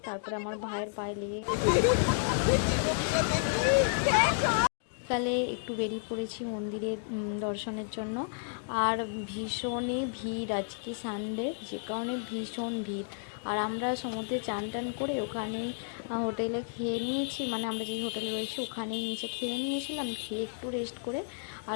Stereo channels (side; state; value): right; silent; digital silence